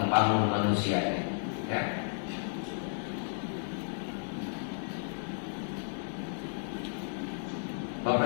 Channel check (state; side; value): silent; right; 55 dB below the other